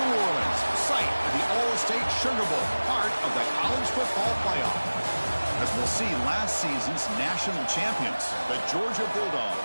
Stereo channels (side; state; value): both; inverted; correlation -1.00